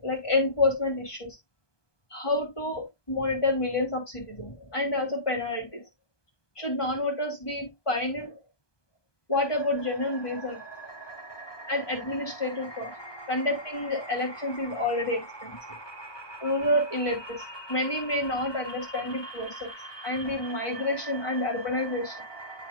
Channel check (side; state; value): right; late; 1.2 ms